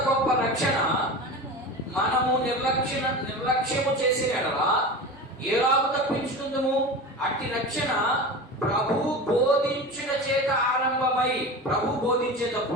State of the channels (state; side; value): normal; both; correlation 0.30